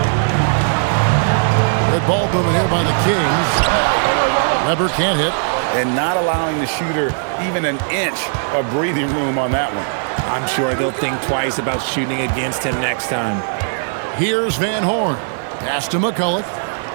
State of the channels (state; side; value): silent; left; 60 dB below the other